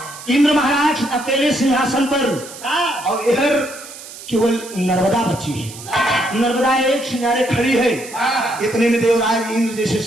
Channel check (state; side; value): noise; right; hiss, 15 dB below the sound